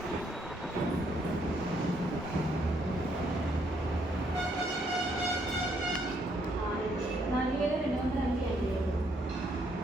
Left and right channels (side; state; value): both; normal; correlation 0.71